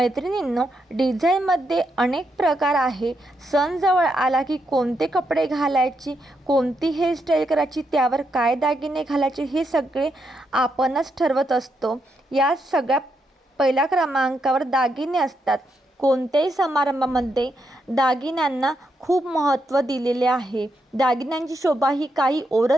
डिझाईनमध्ये अनेक प्रकार आहे। सण जवळ आला की कोणते कपडे घालायचे, कोणती हेअरस्टाईल करायची, त्यावर काय दागिने घालायचे हे सगळे आपणच ठरवत असतो। या सगळ्या पहिल्या क्रमांकावर दागिने असतात। कोणत्याही समारंभामध्ये दागिन्यांना खूप महत्त्व दिलेले आहे। दागिन्यांची शोभा ही काही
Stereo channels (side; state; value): both; normal; correlation 0.81